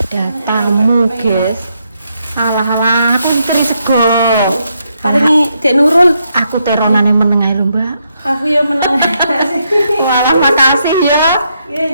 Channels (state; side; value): inverted; both; correlation -0.78